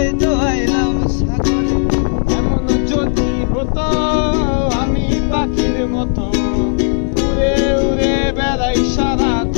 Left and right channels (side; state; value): right; silent; digital silence